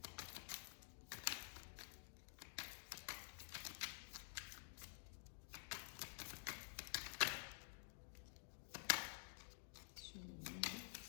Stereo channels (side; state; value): right; silent; digital silence